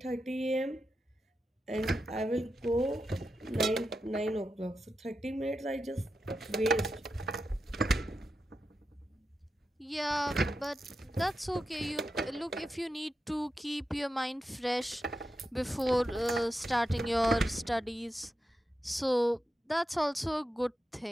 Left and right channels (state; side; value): normal; both; correlation 0.89